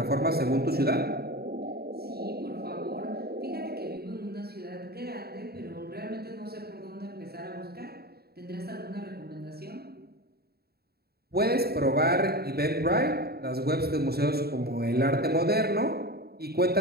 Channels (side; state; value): left; late; 0.46 ms